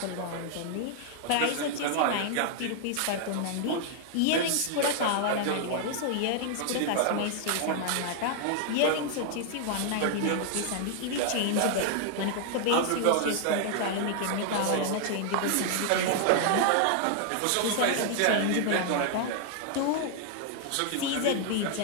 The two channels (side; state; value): both; different; correlation 0.00